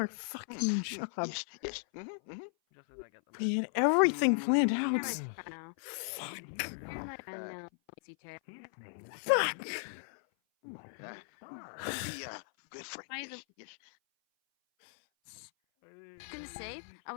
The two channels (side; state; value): right; silent; 54 dB below the other